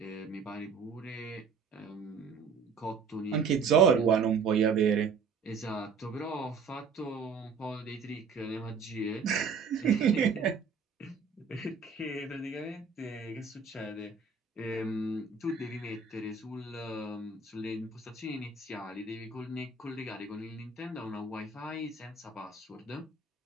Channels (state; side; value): quieter; left; 5.2 dB